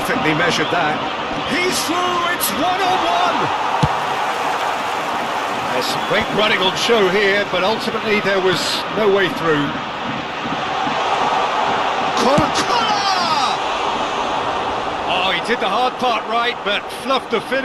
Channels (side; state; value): both; identical; correlation 1.00